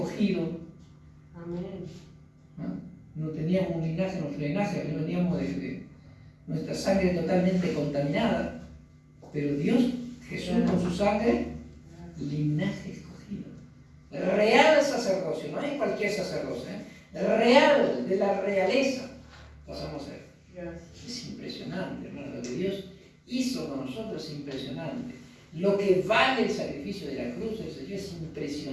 Amén. No teníamos un linaje, nuestro linaje veníamos de nuestra sangre totalmente contaminada, pero Dios, Jesús con su sangre, linaje escogido, real sacerdocio, no es cualquier sacerdocio, real, de la realeza pasamos a ser. Es impresionante, hermano, lo que Dios hizo con nosotros es impresionante. Lo que vale el sacrificio de la cruz del Señor es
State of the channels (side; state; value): both; identical; correlation 1.00